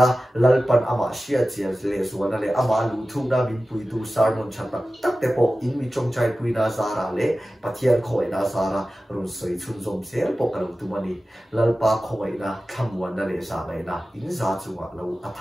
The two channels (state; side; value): normal; both; correlation 0.95